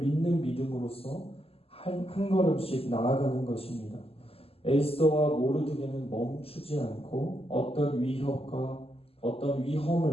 믿음으로써 한 걸음씩 나아가는 것입니다. 에스더와 모르드게는 멈추지 않고 어떤 위협과 어떤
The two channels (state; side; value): late; right; 0.28 ms